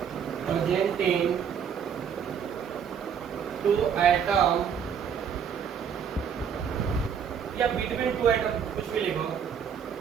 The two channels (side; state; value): left; quieter; 7.6 dB